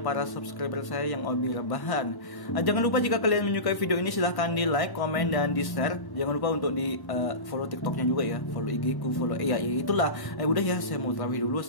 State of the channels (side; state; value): right; late; 1.1 ms